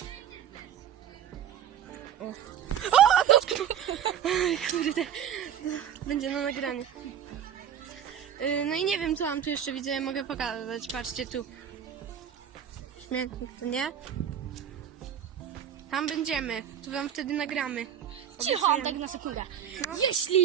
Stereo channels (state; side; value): quieter; left; 9.4 dB